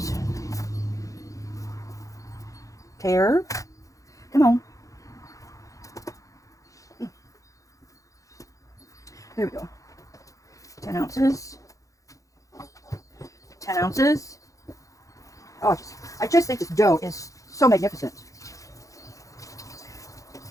Tear. Come on. There we go. 10 ounces. 10 ounces. Oh, I just think this dough is so magnificent.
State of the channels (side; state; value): right; late; 0.16 ms